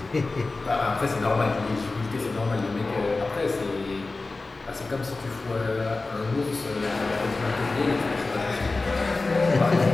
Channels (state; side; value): quieter; right; 3.5 dB